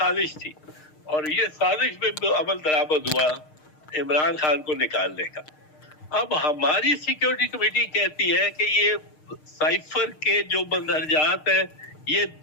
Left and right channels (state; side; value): late; right; 6.5 ms